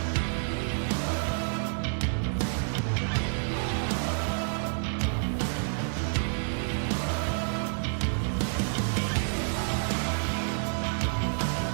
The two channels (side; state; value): left; silent; digital silence